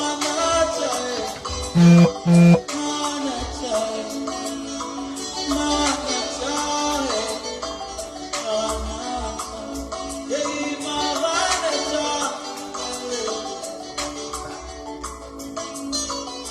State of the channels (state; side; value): identical; both; correlation 1.00